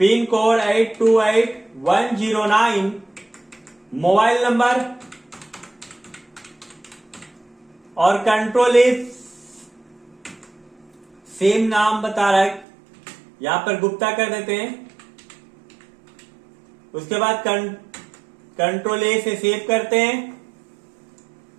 pin code 828109, mobile number और कंट्रोल इज सेम नाम बता रहा है, यहां पर गुप्ता कर देते हैं। उसके बाद कंट्रोल ए से सेव करते हैं,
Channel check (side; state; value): left; drops out; at 12.7 s